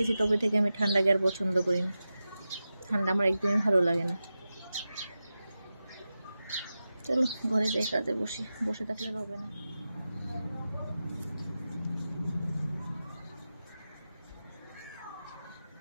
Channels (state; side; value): inverted; both; correlation -0.93